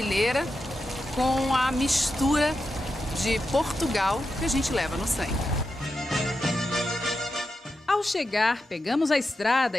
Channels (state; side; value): normal; both; correlation 0.88